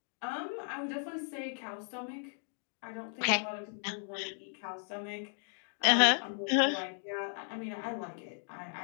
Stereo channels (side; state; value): right; silent; 54 dB below the other